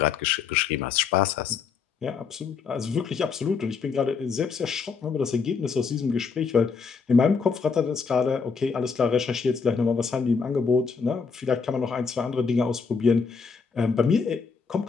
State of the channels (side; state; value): right; quieter; 5.4 dB